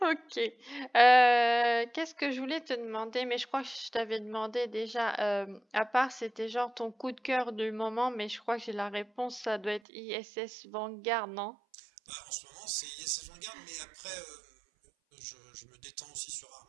Qu'est-ce que je voulais te demander? Mais je crois que je t'avais demandé déjà. À part, c'était genre ton coup de cœur du moment, mais je crois que j'ai la réponse. Ça doit être ISS Vanguard, non? Bah, en ce moment, c'est Yes Vanguard, mais après, je me détends aussi sur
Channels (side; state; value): left; drops out; at 9.8 s